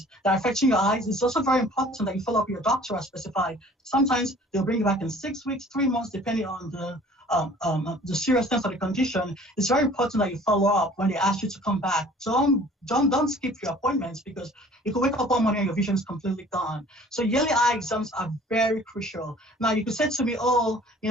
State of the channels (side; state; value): both; normal; correlation 0.50